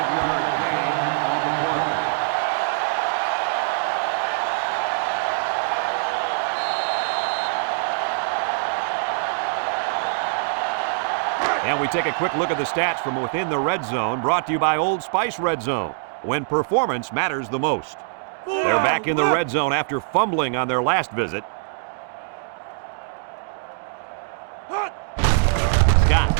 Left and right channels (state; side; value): silent; left; digital silence